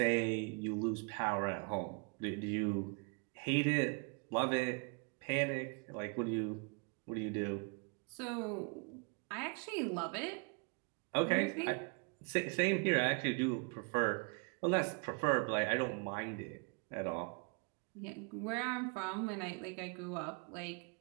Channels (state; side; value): quieter; left; 35.2 dB